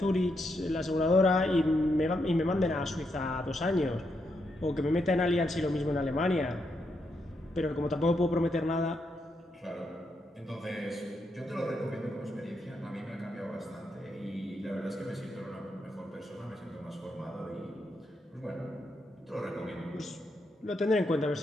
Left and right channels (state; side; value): normal; both; correlation 0.81